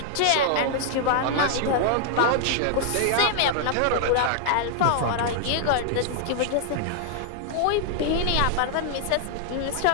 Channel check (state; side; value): different; both; correlation -0.01